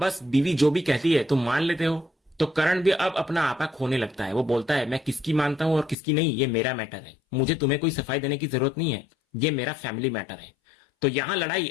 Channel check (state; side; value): drops out; right; at 6.0 s